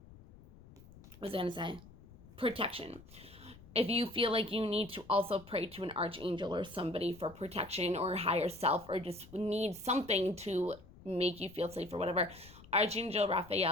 was I going to say? Protection. If you feel like you need to also pray to an archangel or somebody for protection or higher self, or just need something to make you feel safe or whatever, Archangel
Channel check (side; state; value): left; noise; rumble, 20 dB below the sound